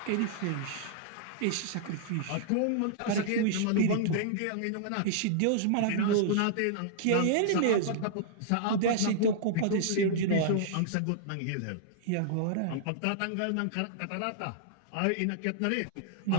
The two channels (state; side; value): different; both; correlation -0.01